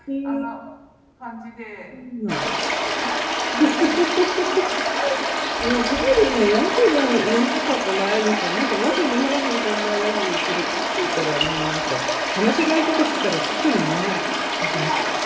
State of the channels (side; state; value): both; identical; correlation 1.00